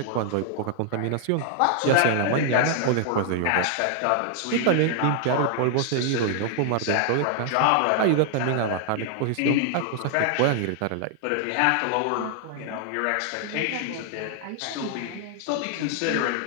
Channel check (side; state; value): both; different; correlation 0.00